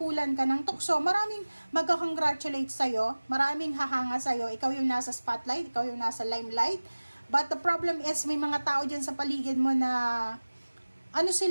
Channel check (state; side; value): inverted; both; correlation -1.00